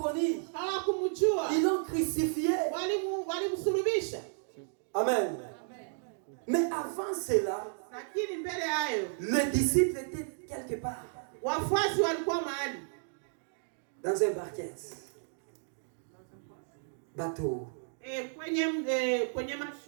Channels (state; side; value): silent; left; digital silence